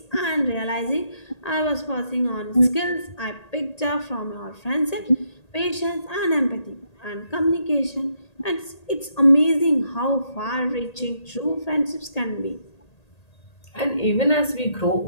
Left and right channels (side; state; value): right; late; 1.8 ms